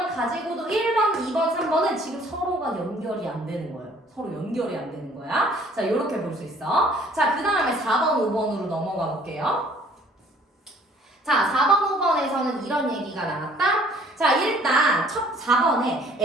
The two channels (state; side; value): normal; both; correlation 0.57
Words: 가지고도 1번, 2번, 3번은 지금 서로가 연결이 안 되는 거예요. 서로 연결이 안 되는 거야. 자, 이렇게 볼 수 있어. 자, 그 다음에 4번, 5번으로 넘어가 볼게요. 자, 4번, 5번에서는 이런 얘기가 나왔다. 자, 일단 첫 4번에